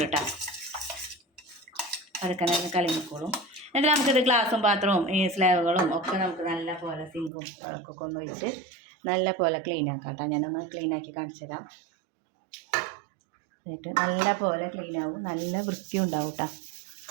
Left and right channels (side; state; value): left; drops out; at 7.3 s